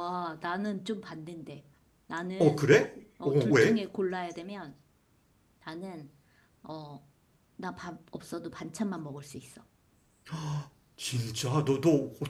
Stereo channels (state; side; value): identical; both; correlation 1.00